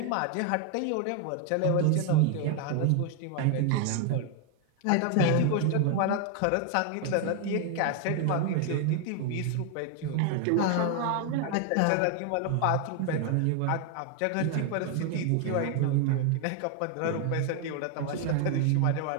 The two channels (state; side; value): different; both; correlation 0.00